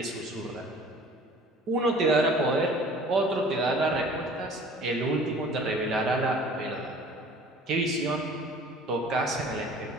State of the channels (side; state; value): both; normal; correlation 0.48